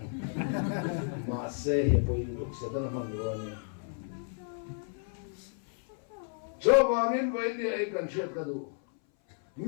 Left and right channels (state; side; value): silent; right; 57 dB below the other